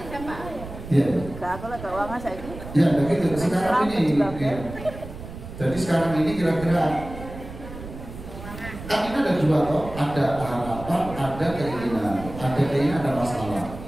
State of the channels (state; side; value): noise; right; rumble, 12 dB below the sound